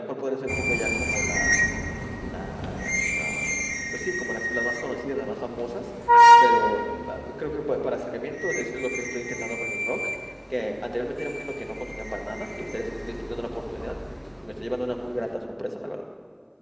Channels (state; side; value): identical; both; correlation 1.00